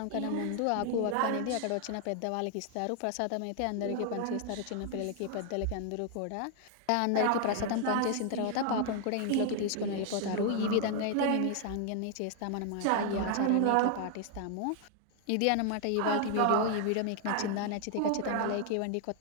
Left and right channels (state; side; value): different; both; correlation 0.00